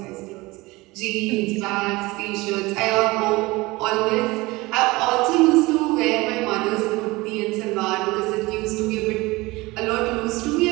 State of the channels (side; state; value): left; quieter; 21.8 dB